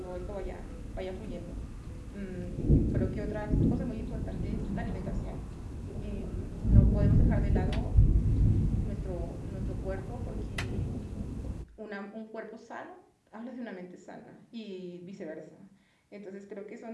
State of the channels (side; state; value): both; identical; correlation 1.00